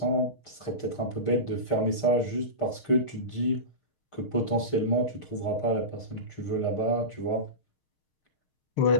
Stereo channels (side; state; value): right; late; 6.5 ms